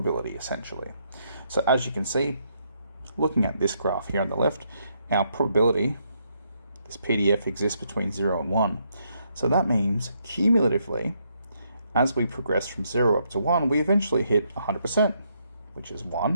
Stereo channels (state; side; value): inverted; both; correlation -0.75